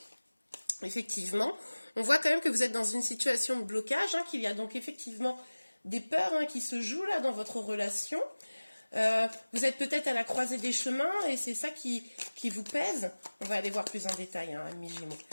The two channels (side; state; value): both; inverted; correlation -1.00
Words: effectivement, on voit quand même que vous êtes dans une situation de blocage, qu'il y a donc effectivement des peurs qui se jouent là dans votre relation. Vous êtes peut-être à la croisée des chemins et c'est ça qui vous pèse. On va aller voir plus en détail, amis Gémeaux.